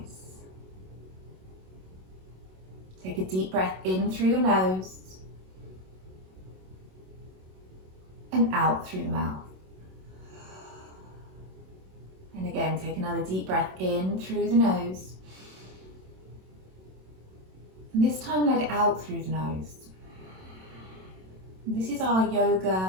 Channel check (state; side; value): late; left; 27 ms